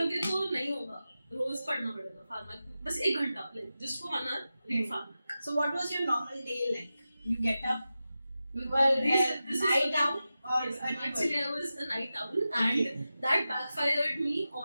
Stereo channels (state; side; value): inverted; both; correlation -0.93